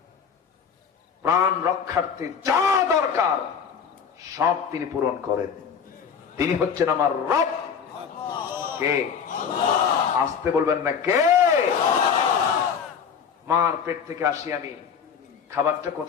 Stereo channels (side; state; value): right; quieter; 6.8 dB